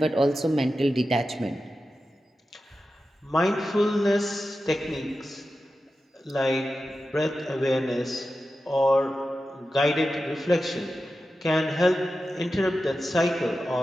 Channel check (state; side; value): normal; both; correlation 0.92